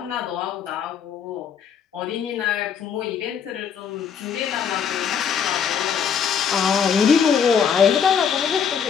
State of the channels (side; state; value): right; quieter; 7.4 dB